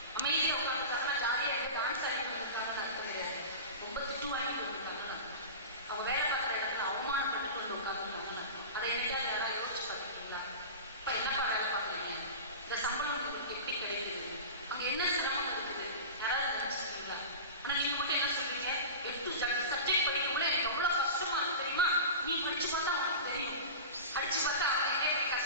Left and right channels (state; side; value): inverted; both; correlation -0.31